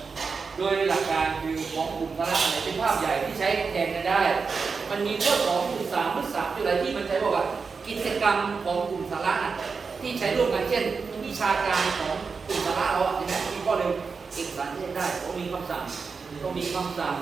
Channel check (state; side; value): quieter; left; 5.0 dB